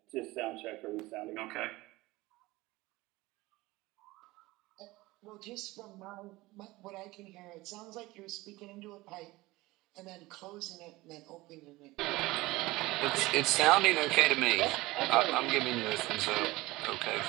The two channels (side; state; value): left; quieter; 20.1 dB